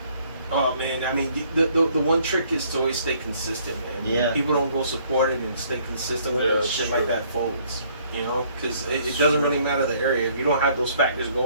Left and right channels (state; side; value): inverted; both; correlation -0.63